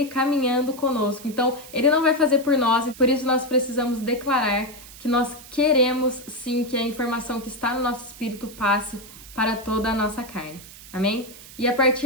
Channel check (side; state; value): right; noise; hiss, 17 dB below the sound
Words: caminhando conosco. Então, ele não vai fazer por nós e por isso nós precisamos declarar que nós queremos sim que a informação que está no nosso espírito passe para toda a nossa carne. Amém? E a